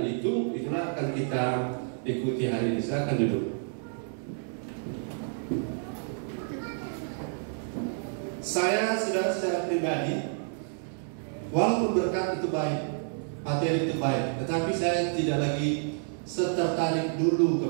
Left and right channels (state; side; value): silent; left; digital silence